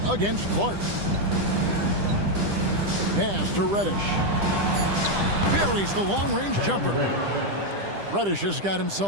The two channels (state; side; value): late; left; 10 ms